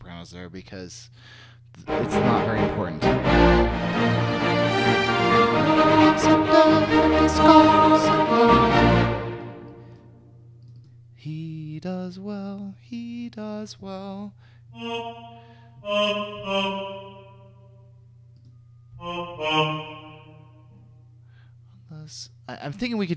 there because it's not very important. He does well, he does well. I'm thinking we could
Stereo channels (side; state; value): both; identical; correlation 1.00